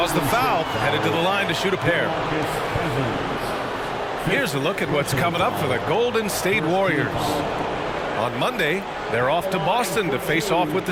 the foul. Headed to the line to shoot a pair. Here's a look at what's coming up for the Golden State Warriors. On Monday, they're off to Boston to face off with the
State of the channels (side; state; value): both; identical; correlation 1.00